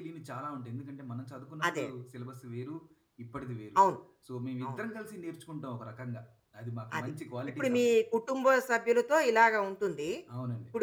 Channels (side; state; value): both; identical; correlation 1.00